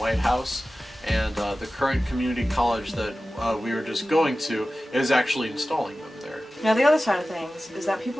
House, and the current community college that we were just going to is actually installing them there. Now, the other side of things is that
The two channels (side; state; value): both; normal; correlation 0.96